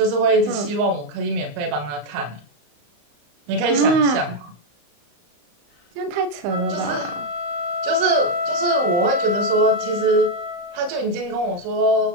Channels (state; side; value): late; left; 34 ms